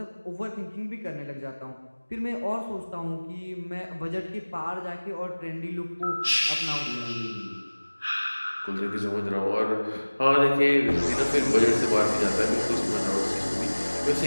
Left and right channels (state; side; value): inverted; both; correlation -1.00